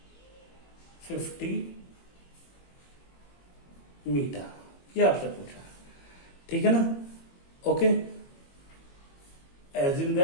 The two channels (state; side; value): late; right; 21 ms